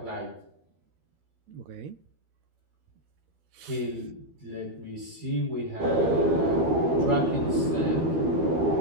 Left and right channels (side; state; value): left; late; 13 ms